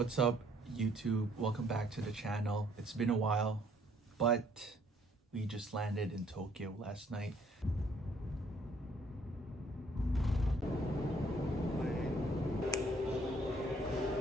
up, YouTube? Welcome back to the channel. It's been a while, but we just landed in Tokyo last night.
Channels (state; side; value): normal; both; correlation 0.64